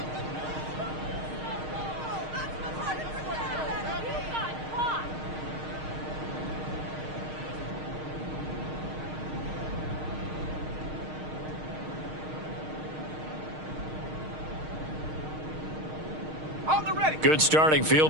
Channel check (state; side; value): late; left; 6.5 ms